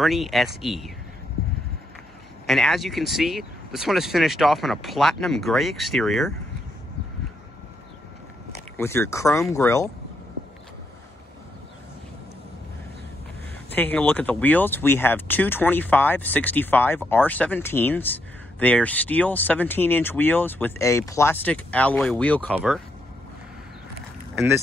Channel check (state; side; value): normal; both; correlation 0.78